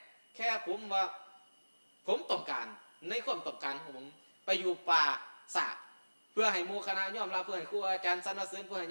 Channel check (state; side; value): inverted; both; correlation -1.00